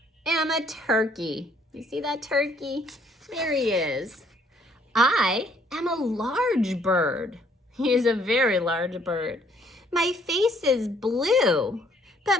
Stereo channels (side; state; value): both; normal; correlation 0.64